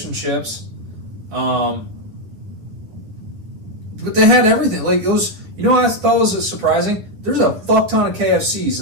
and chips. But they had everything. Like, it was. You know what I thought was surprising? There's a fuck ton of KFCs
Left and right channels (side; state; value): left; late; 10 ms